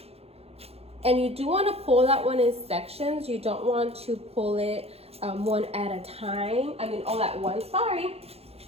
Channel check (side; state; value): left; late; 0.29 ms